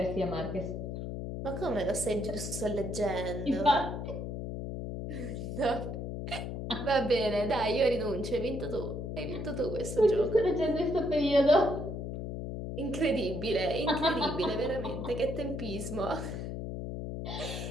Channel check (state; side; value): noise; left; hum, 5 dB below the sound